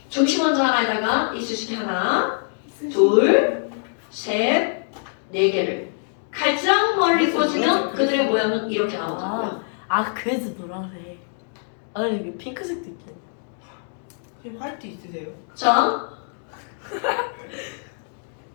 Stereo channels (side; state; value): right; silent; 58 dB below the other